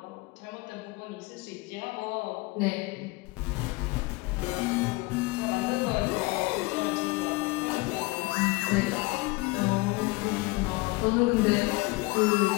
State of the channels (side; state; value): right; quieter; 24.0 dB